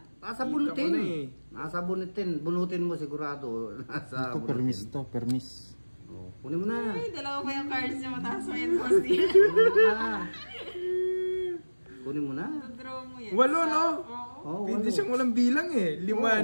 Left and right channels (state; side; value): inverted; both; correlation -1.00